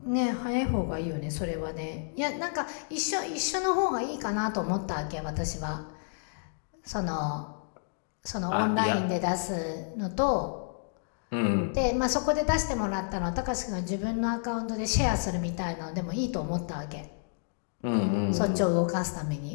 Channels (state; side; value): silent; right; digital silence